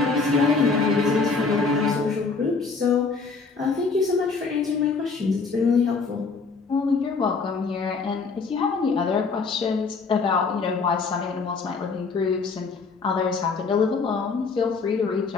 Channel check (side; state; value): right; quieter; 4.5 dB